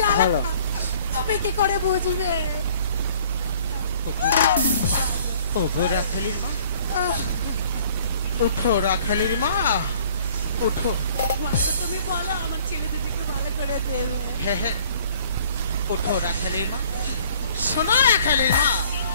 তুমি কি করে বুঝবে। ওগো রাখালের মা, উঠো রাখালের মা, উঠো। মাগো, তুমি বলো আমার ছেলে দুটিকে ভালো করে দেবে। হ্যাঁ হ্যাঁ, উঠো রাখালের মা। শোনো রাখালের মা,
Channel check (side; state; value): both; inverted; correlation -0.55